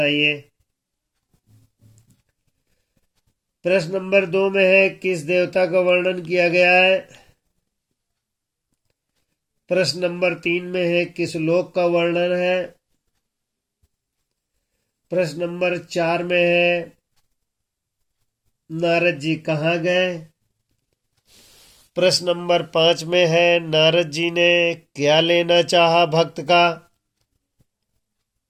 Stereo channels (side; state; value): both; identical; correlation 1.00